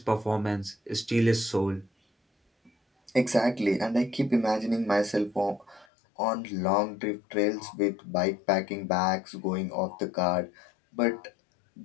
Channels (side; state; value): right; drops out; at 5.9 s